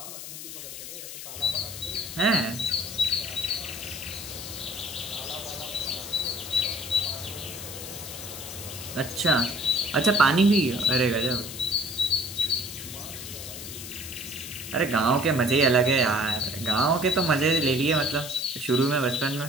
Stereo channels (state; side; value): noise; left; hiss, 10 dB below the sound